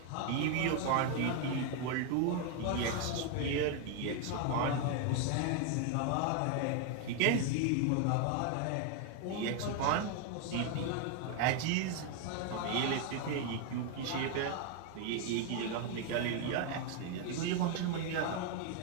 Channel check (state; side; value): different; both; correlation 0.01